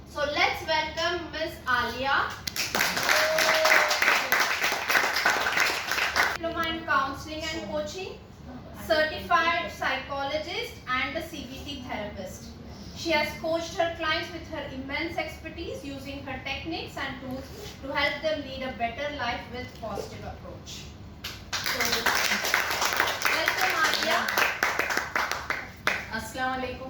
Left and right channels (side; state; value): both; identical; correlation 1.00